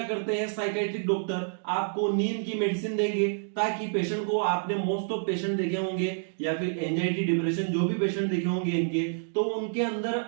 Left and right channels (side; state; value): left; silent; digital silence